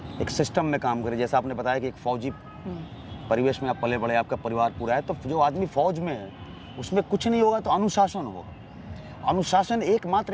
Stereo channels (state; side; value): identical; both; correlation 1.00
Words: एक सिस्टम में काम करे। जैसा आपने बताया कि एक फौजी परिवेश में आप पले बड़े, आपका परिवार पूरा है, तो जो आदमी फौज में है उसमें कुछ नहीं होगा तो अनुशासन होगा। अनुशासन